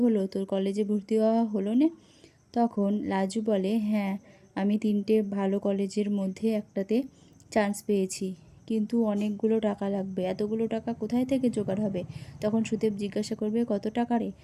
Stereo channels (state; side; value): identical; both; correlation 1.00